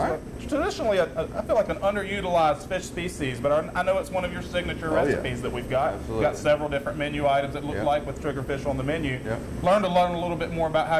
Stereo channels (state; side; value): identical; both; correlation 1.00